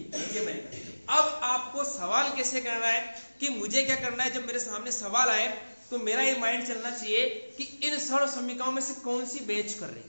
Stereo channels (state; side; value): inverted; both; correlation -1.00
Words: ये बनेगा। अब आपको सवाल कैसे करना है कि मुझे क्या करना है, जब मेरे सामने सवाल आए तो मेरा ये माइंड चलना चाहिए कि इन सर्व समीकरणों में से कौन सी बेच कर रही है,